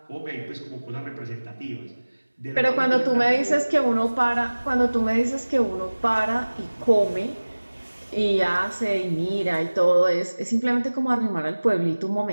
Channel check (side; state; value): both; inverted; correlation -1.00